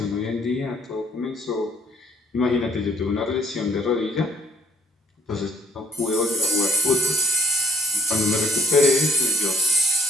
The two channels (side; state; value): both; normal; correlation 0.62